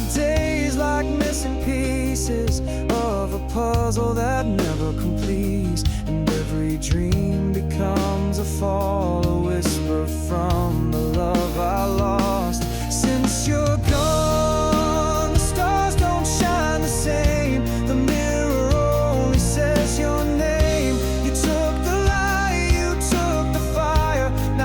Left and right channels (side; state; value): both; identical; correlation 1.00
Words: days like missing pieces of of a puzzle that never completes, and every dream becomes a fall, a whisper from the love I lost. Since you're gone, the stars don't shine the same. The mirror only says your name. You took the light, you took the fire.